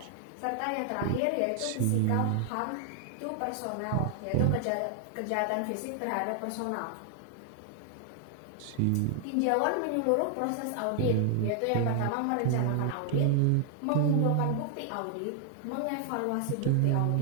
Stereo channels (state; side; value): different; both; correlation 0.00